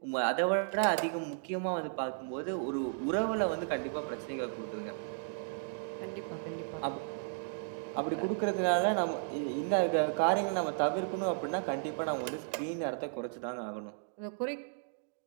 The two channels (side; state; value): left; silent; digital silence